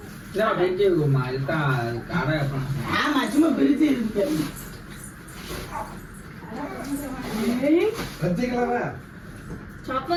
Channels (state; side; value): identical; both; correlation 1.00